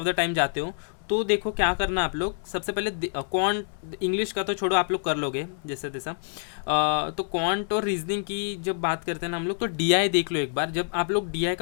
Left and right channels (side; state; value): right; silent; 60 dB below the other